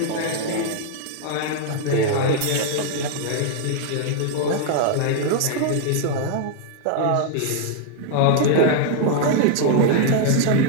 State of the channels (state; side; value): different; both; correlation 0.00